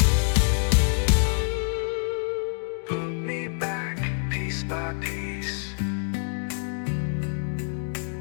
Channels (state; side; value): silent; right; digital silence